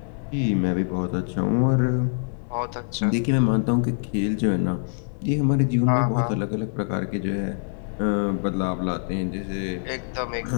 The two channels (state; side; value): silent; right; digital silence